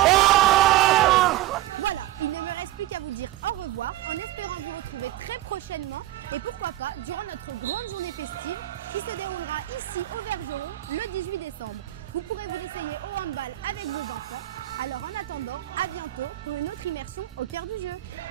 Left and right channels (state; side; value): quieter; left; 15.1 dB